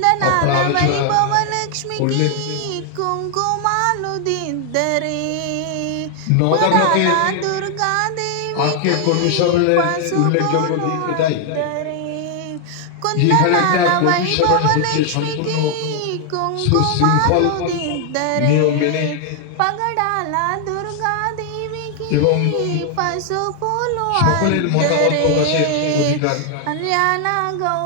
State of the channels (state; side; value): different; both; correlation 0.00